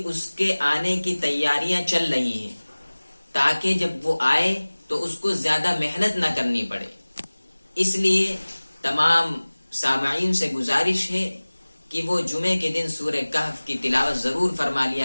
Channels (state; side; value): inverted; both; correlation -1.00